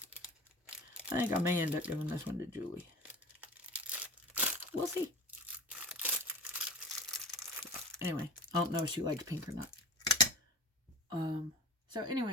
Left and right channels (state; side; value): normal; both; correlation 0.35